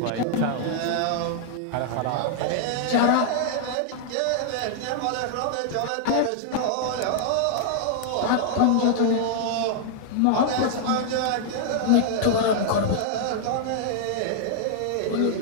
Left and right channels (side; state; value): both; different; correlation -0.01